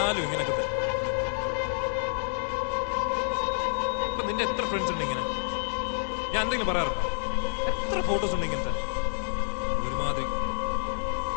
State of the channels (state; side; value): silent; right; digital silence